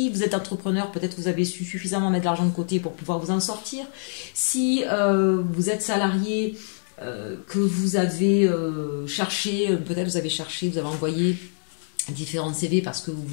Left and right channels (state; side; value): silent; right; digital silence